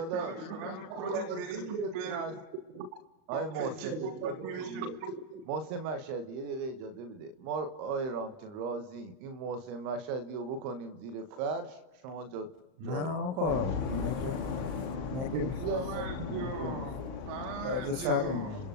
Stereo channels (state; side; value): late; left; 38 ms